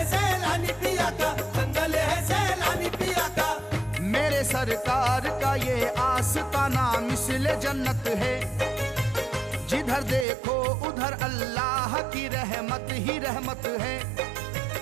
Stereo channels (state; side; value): drops out; left; at 10.2 s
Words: सैलानी पिया का, संदल है सैलानी पिया का। मेरे सरकार का ये आस्ताना मिसले जन्नत है, जिधर देखो उधर अल्लाह की रहमत ही रहमत है।